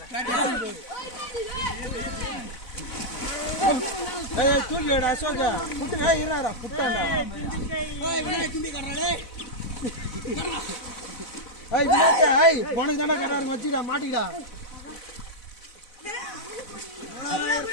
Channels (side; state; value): right; late; 4.0 ms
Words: தூக்கிடா அசோக புட்டுடா இருடா புட்டாண்டா உனக்கு தாண்டா கட்டாருங்க வச்சுடா மாட்டிக்கிடா